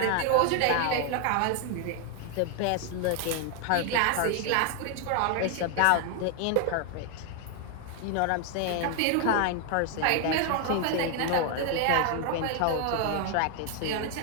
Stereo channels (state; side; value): different; both; correlation 0.00